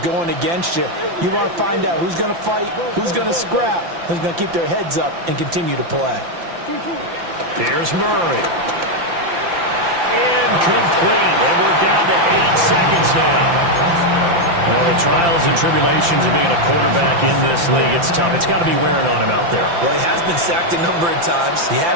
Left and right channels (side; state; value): left; late; 5.8 ms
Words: against you. You want to find out who's going to fight, who's going to scrap, who's going to keep their heads up and continue to play. Here's Murray. Incomplete. And we're down to 8 seconds now. Well, the trials and tribulations of being a quarterback in this league, it's tough. It's got to be wearing on him out there. Well, he has been sacked a number of times. He had